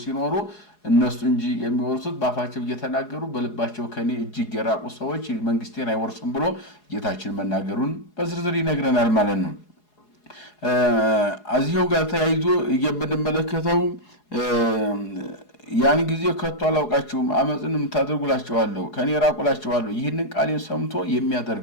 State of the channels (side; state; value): right; late; 4.8 ms